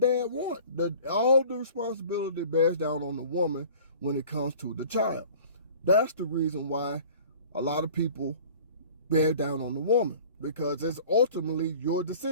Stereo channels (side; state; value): both; inverted; correlation -0.46